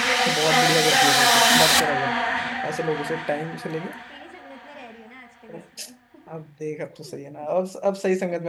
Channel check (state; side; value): identical; both; correlation 1.00